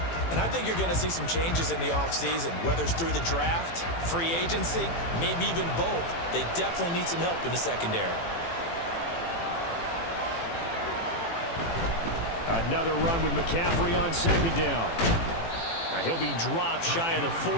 And I think you're going to see some changes in the offseason, whether it's through the draft, free agency, maybe even both. They definitely need some help in the secondary. Another run with McCaffrey on second down. He'll be dropped shy of the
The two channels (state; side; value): late; right; 18 ms